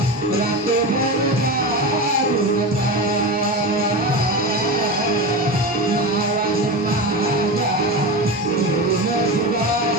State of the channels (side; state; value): both; normal; correlation 0.23